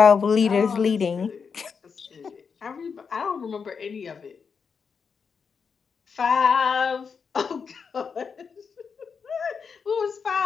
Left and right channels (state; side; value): quieter; right; 5.9 dB